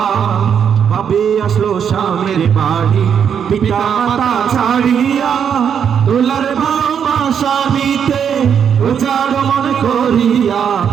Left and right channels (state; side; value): quieter; left; 7.8 dB